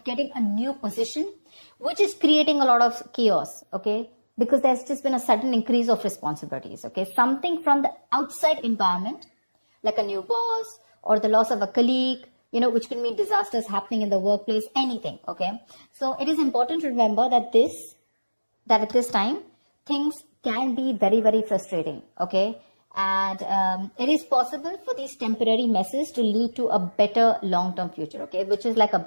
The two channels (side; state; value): both; inverted; correlation -1.00